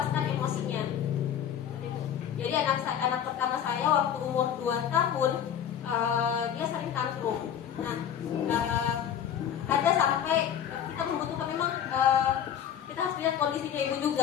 emosinya. Jadi anak pertama saya waktu umur 2 tahun, dia sering tantrum. Nah, ada sampai kita membutuhkan memang kita harus lihat kondisinya ibu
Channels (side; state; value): right; quieter; 9.2 dB